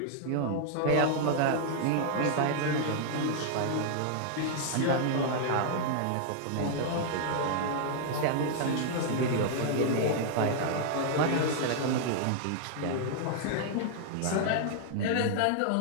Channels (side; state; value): both; different; correlation -0.01